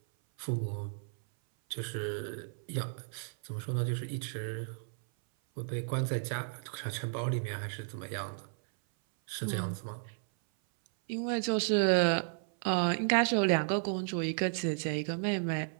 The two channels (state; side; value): silent; left; 55 dB below the other